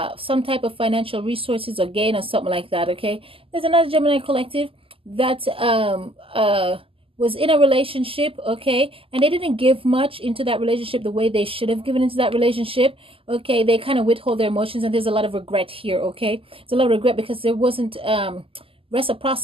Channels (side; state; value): left; late; 0.26 ms